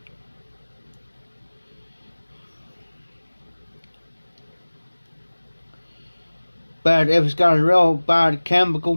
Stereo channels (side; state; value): both; inverted; correlation -1.00